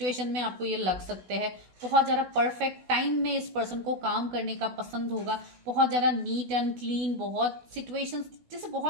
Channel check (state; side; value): late; left; 16 ms